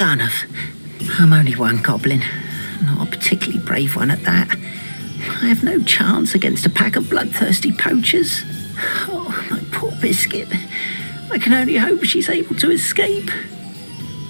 I'm only one goblin. Not a particularly brave one at that. I have no chance against a pack of bloodthirsty poachers. Oh, my poor Biscuit. I can only hope she's able to escape.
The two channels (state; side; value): inverted; both; correlation -1.00